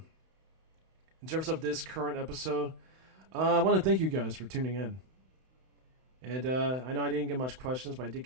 this current episode, I want to thank you guys for tuning in. And I know I didn't get much questions, but I did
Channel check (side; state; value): left; late; 31 ms